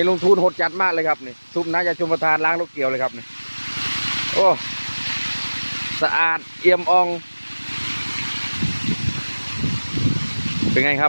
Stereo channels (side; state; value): both; inverted; correlation -1.00